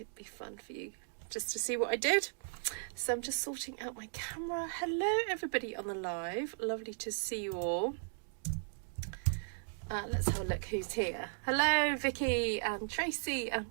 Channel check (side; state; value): left; silent; digital silence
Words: be fun for you just to see what I did. So I'm just sorting out my camera. Hello, everybody on the live. Lovely to see you all. Let's have a look who's here. Hello, Vicky and Tracy and